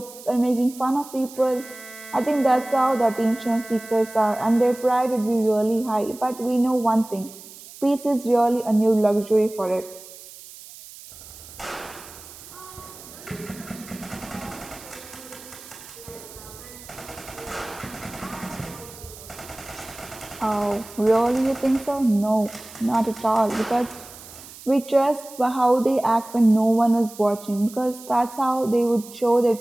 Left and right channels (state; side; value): noise; right; hiss, 17 dB below the sound